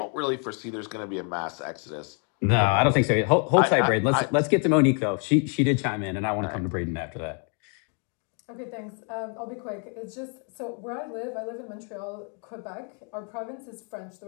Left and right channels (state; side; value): quieter; right; 39.9 dB